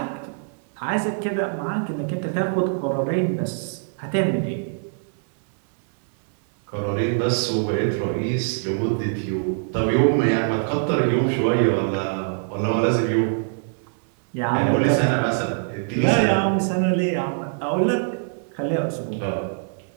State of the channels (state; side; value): silent; left; digital silence